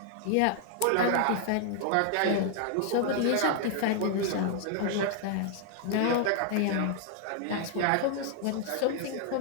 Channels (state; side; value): different; both; correlation 0.00